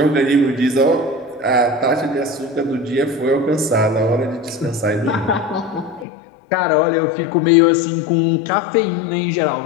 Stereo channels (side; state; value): right; drops out; at 6.1 s